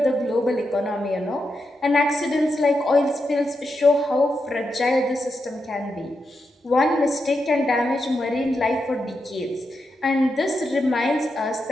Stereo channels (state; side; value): normal; both; correlation 0.86